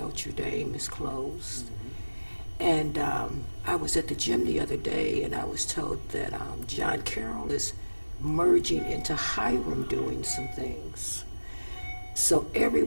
Dame is closed. And I was at the gym the other day, and I was told that John Carroll is merging into Hiram doing some things. So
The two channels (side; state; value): both; inverted; correlation -1.00